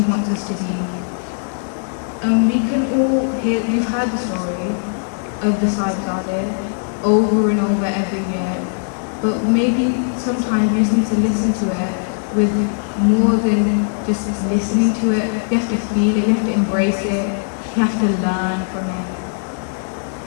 wants us to be. And we can all we've heard the story of the Sahibzadeh over and over every year, but maybe sometimes you just need to listen to it with more than just listening to it. You have to feel it, you have to embrace it, you have to learn from it.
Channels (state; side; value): silent; right; digital silence